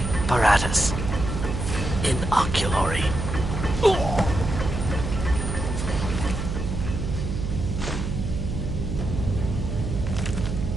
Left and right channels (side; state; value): right; noise; hum, 3 dB below the sound